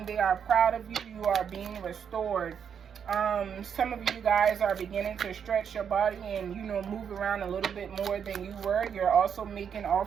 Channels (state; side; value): quieter; left; 7.6 dB